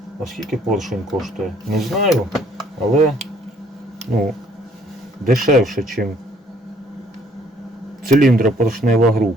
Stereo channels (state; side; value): normal; both; correlation 0.62